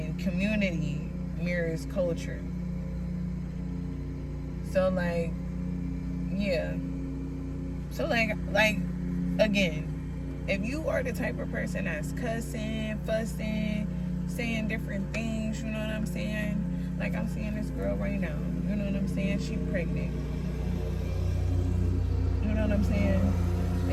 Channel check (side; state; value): both; identical; correlation 1.00